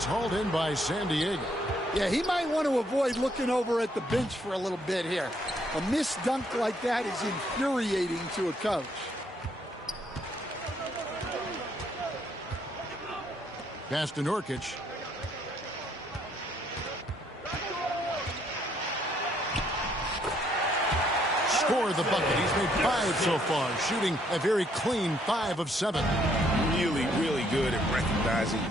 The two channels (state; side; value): normal; both; correlation 0.69